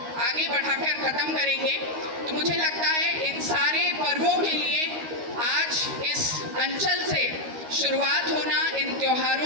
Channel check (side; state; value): left; late; 13 ms